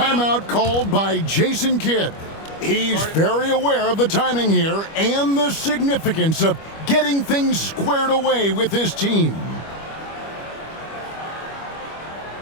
called by Jason Kidd. He's very aware of the timing here and the significance of getting things squared away with his team.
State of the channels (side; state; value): right; late; 25 ms